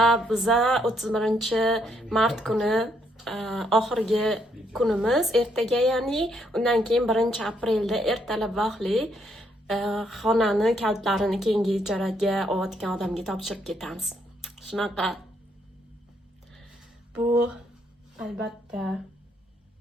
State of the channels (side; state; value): both; normal; correlation 0.73